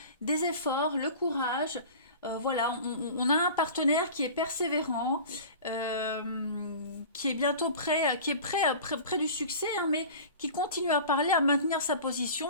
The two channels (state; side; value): inverted; both; correlation -0.38